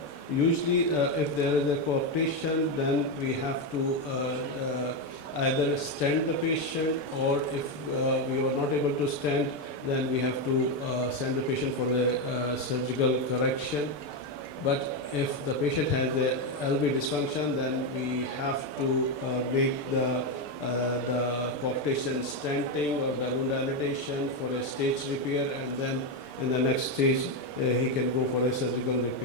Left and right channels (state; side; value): late; right; 6.8 ms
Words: usually, if there is a coarctation, then we have to either stent the patient, or if we are not able to stent, then we have to send the patient for the surgical correction. But if the patient has a LV dysfunction, then we have to make the coarctation stenting or balloon dilatation for a stage repair, and then in the next stage he can go for a surgical